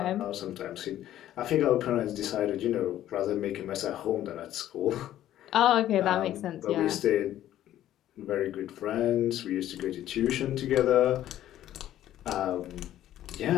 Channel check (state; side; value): quieter; right; 12.6 dB